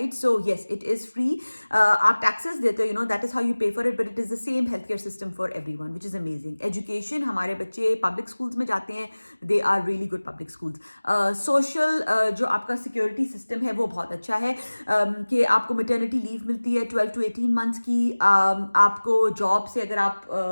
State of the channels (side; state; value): both; inverted; correlation -1.00